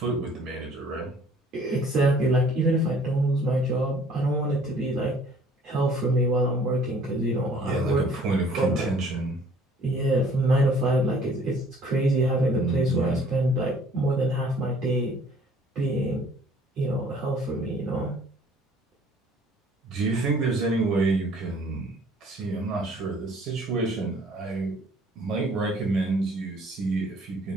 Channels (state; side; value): normal; both; correlation 0.56